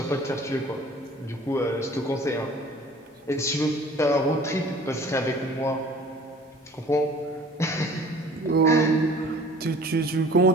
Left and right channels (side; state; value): both; normal; correlation 0.49